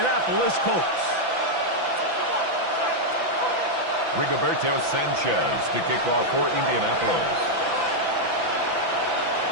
Colts. Rigoberto Sanchez to kick off for Indianapolis.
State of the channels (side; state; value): left; late; 6.0 ms